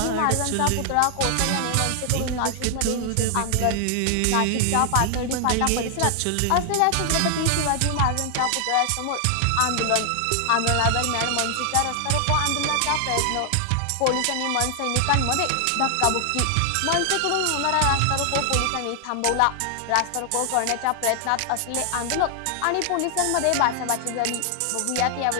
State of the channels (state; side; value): different; both; correlation 0.00